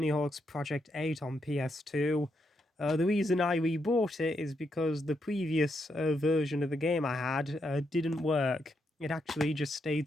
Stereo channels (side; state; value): both; normal; correlation 0.80